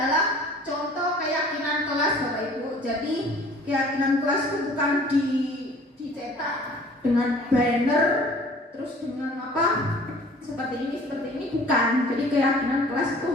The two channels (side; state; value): both; normal; correlation 0.49